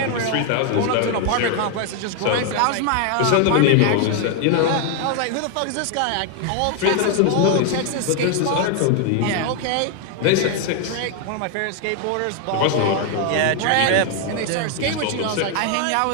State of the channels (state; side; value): different; both; correlation 0.00